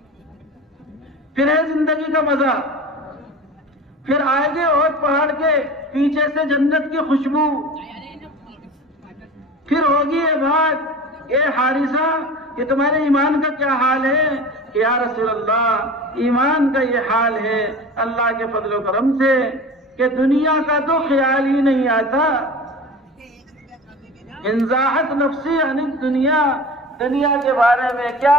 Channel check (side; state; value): both; normal; correlation 0.35